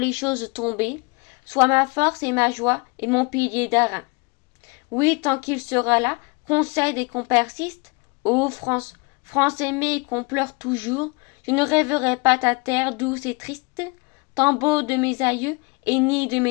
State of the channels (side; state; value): right; quieter; 29.4 dB